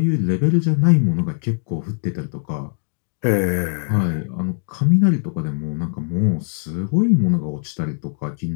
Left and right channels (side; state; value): right; silent; 65 dB below the other